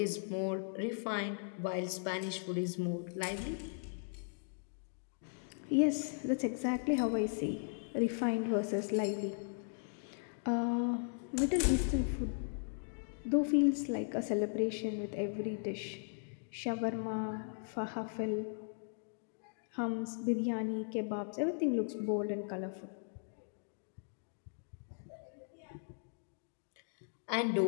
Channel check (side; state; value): right; silent; digital silence